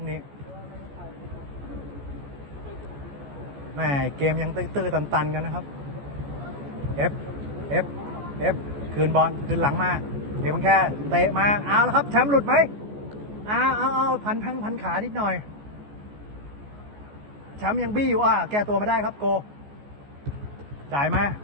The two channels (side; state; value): left; late; 14 ms